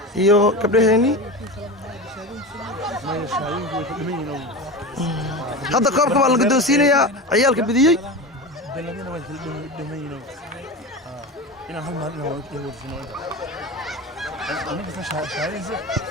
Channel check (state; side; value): normal; both; correlation 0.26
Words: iyo gabdhaheennii hadda koobka baa la guddoonsiinayaa ciyaalka bidiyey ina hal maalin oo ay warfino aniga ka shaqeeyay